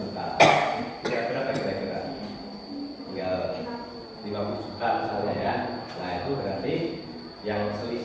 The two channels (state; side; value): identical; both; correlation 1.00